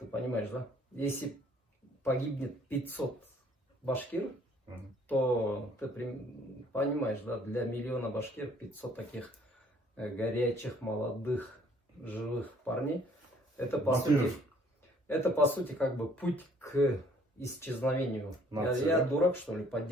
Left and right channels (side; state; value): both; normal; correlation 0.60